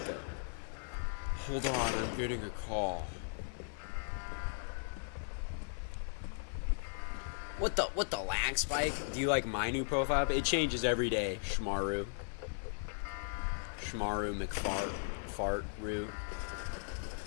Hold on, I'm getting a call. What the lag spike? Do you like my new profile? It changes every day, Shmaru. Shmaru McFart-Roo.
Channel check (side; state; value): right; silent; 53 dB below the other